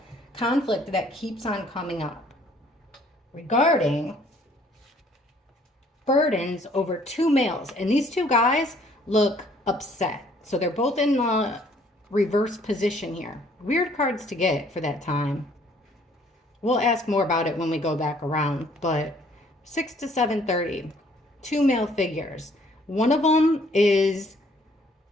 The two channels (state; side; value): normal; both; correlation 0.61